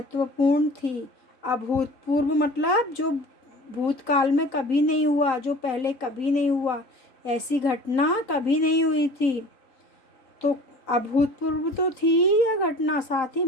थी। अभूतपूर्व मतलब जो भूतकाल में कभी नहीं हुआ, जो पहले कभी नहीं हुआ, ऐसी घटना कभी नहीं हुई थी। तो अभूतपूर्व तो थी यह घटना, साथ ही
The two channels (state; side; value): late; right; 3.8 ms